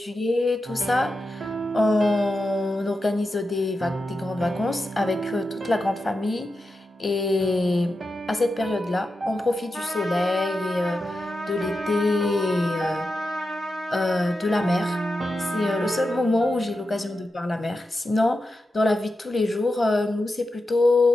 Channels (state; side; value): normal; both; correlation 0.90